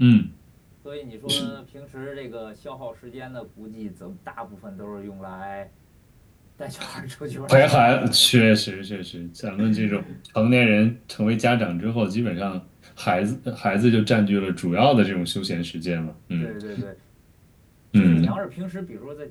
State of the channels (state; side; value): identical; both; correlation 1.00